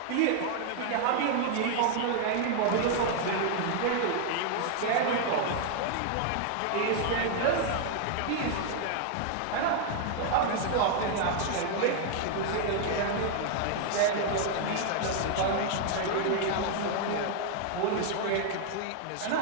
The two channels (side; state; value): both; different; correlation 0.00